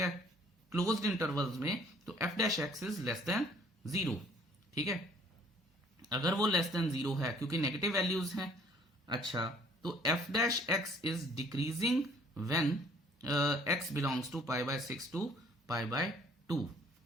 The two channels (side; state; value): both; normal; correlation 0.58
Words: क्लोज्ड इंटरवल्स में, तो f dash x is less than 0, ठीक है। अगर वो लेस देन 0 है क्योंकि नेगेटिव वैल्यूज हैं, अच्छा, तो f dash x is decreasing when x belongs to pi by 6 to pi by 2।